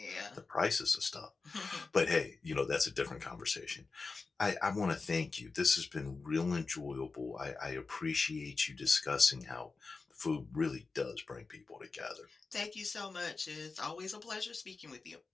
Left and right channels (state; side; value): quieter; right; 4.1 dB